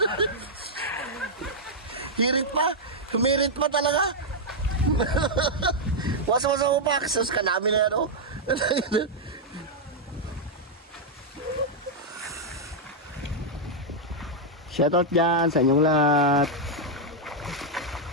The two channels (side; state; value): both; normal; correlation -0.04